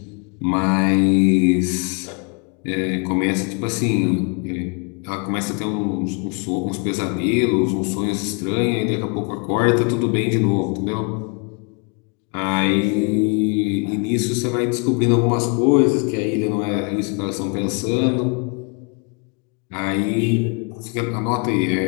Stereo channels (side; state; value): right; quieter; 35.0 dB